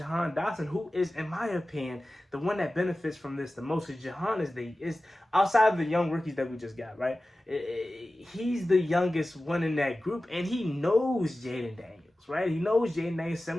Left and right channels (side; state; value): both; normal; correlation 0.96